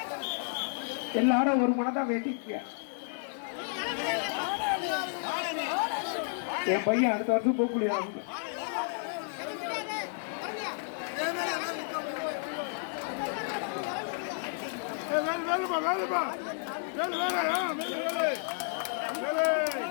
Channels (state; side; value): silent; right; digital silence